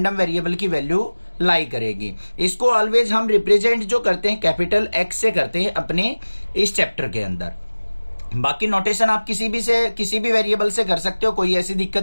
वेरिएबल की वैल्यू लाई करेगी। इसको ऑलवेज हम रिप्रेजेंट जो करते हैं कैपिटल एक्स से करते हैं अपने इस चैप्टर के अंदर। बाकी नोटेशन आप किसी भी वेरिएबल से कर सकते हो, कोई ऐसी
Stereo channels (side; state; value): both; inverted; correlation -1.00